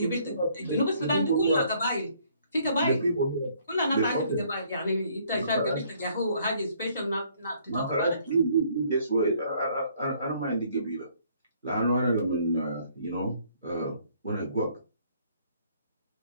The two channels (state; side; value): inverted; both; correlation -0.63